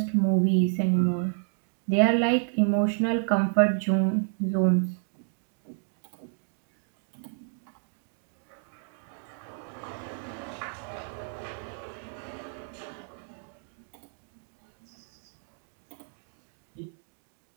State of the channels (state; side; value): silent; left; 57 dB below the other